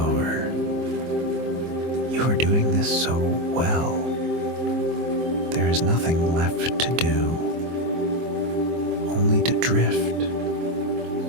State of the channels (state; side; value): late; left; 24 ms